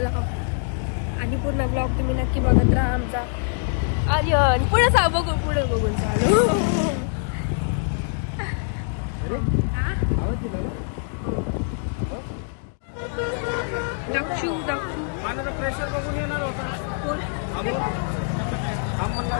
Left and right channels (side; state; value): right; silent; 62 dB below the other